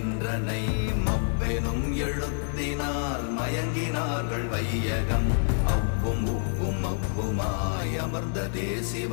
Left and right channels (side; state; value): right; silent; digital silence